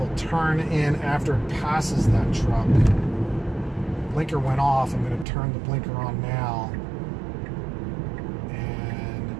turn in after it passes that truck. Blinker went off. I'm going to turn the blinker on now.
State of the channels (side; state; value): left; drops out; at 5.2 s